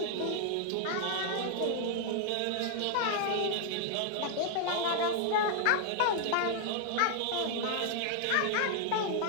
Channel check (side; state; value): both; different; correlation 0.00